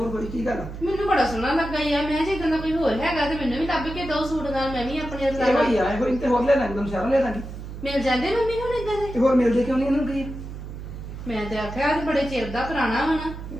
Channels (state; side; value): noise; right; hum, 10 dB below the sound